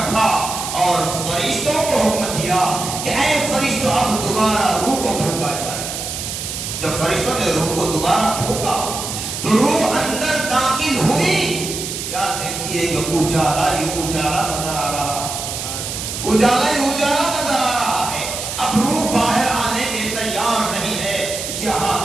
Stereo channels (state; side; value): noise; right; hiss, 5 dB below the sound